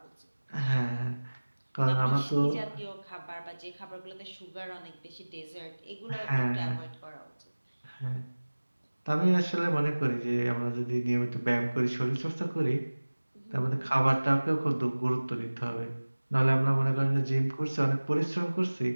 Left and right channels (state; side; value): inverted; both; correlation -1.00